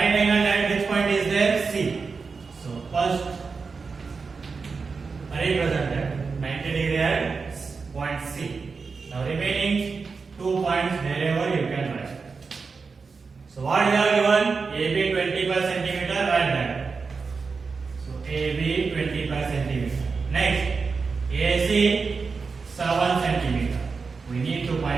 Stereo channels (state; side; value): quieter; left; 4.8 dB